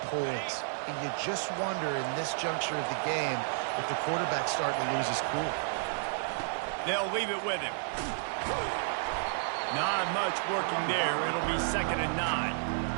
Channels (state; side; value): silent; left; digital silence